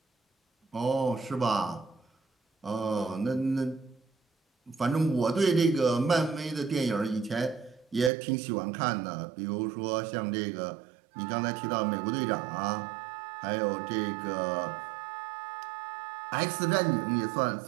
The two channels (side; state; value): left; drops out; at 8.1 s